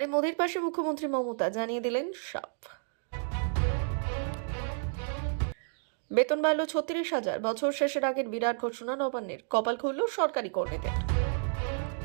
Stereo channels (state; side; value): silent; left; digital silence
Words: মোদীর পাশে মুখ্যমন্ত্রী মমতা, জানিয়ে দিলেন সব। বেতন বাড়ল 36,000, বছর শেষের আগের বিরাট ঘোষণা নবান্নের, কপাল খুলল সরকারি কর্মীদের।